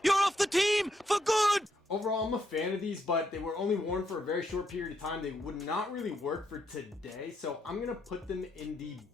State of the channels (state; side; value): normal; both; correlation 0.77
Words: You're off the team for good! Overall, I'm a fan of these, but they were only worn for a very short period of time. They would not really work for today, so I'm going to put them in the